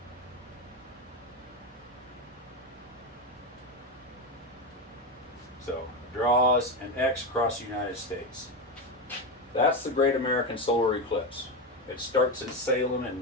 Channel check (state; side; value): normal; both; correlation 0.14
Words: So draws an X across the United States. That's the Great American Solar Eclipse. It starts in Salem